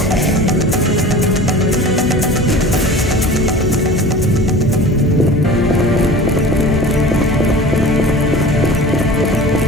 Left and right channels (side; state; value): both; normal; correlation 0.39